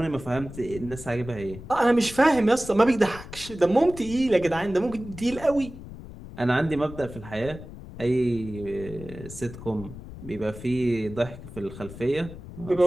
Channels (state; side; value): noise; left; rumble, 14 dB below the sound